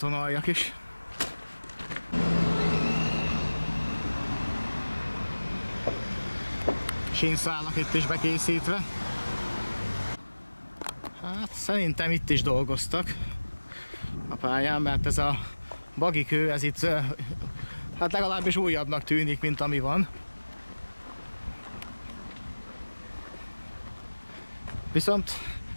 is. Sínszálak itt is bekészítve. Hát szerintem itt is dolgoztak a pályán, mert ez a bagikő, ez itt hát legalábbis újabbnak tűnik, mint ami van. Viszont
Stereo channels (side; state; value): both; inverted; correlation -1.00